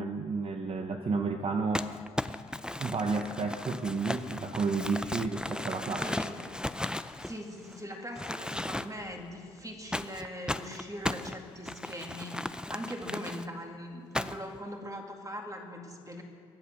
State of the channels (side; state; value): both; normal; correlation 0.72